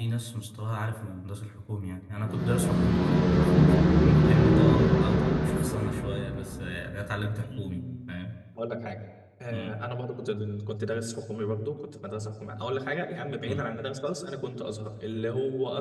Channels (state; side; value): identical; both; correlation 1.00